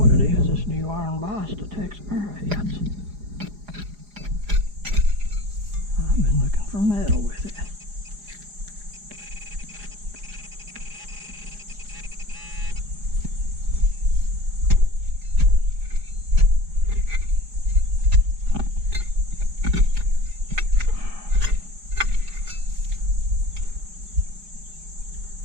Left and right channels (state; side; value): late; left; 4.9 ms